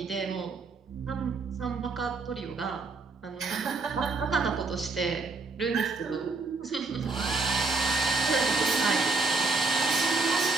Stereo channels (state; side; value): quieter; left; 3.9 dB